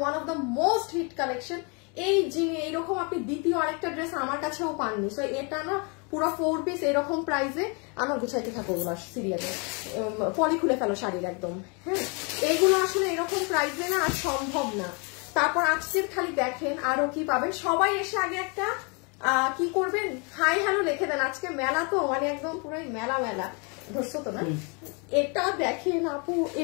of the most hit collection. এই জিনিস এইরকম আপনি দ্বিতীয় আরেকটা ড্রেস আমার কাছেও পাননি। সো এটা না পুরো 4 পিস এরকম প্রাইসে আমার গুছাইতে থাকো ওগুলো সিরিয়ালে, পলি খুলে ফেলো শাড়ির একদম। হ্যাঁ এইগুলো আসলে এরকম প্রাইসে না আর সম্ভব না। তারপর আজকের খালি দেখেন আরো কি পাবেন। সবাই এসে আগে একটা কি করবেন, হাই হ্যালো লিখে দেন। আজকে মেলা তো মানে একদম পুরোই মেলা মেলা ধরছো তো না। এটা দেখেন আপু,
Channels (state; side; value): quieter; right; 33.6 dB